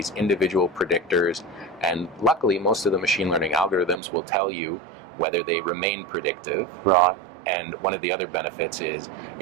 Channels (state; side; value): drops out; left; at 4.0 s